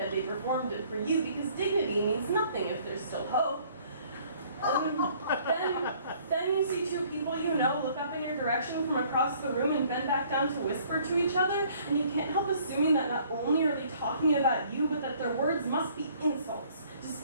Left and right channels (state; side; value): inverted; both; correlation -0.58